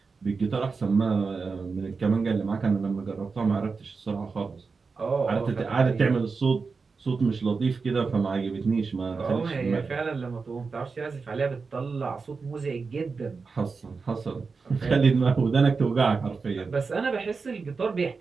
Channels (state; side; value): quieter; left; 4.7 dB